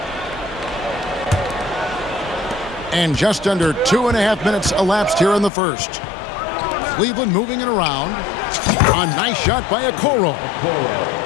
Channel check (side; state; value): right; drops out; at 5.5 s